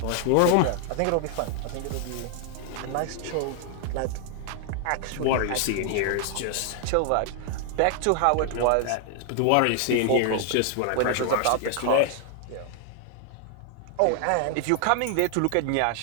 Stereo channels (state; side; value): different; both; correlation 0.00